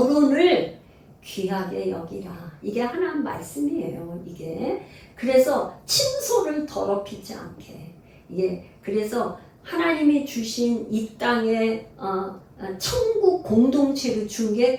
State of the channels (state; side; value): identical; both; correlation 1.00